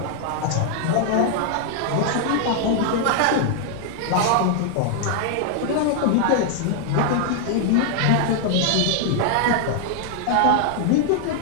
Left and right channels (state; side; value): different; both; correlation 0.00